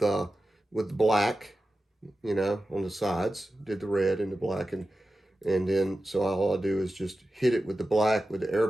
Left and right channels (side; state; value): both; normal; correlation 0.93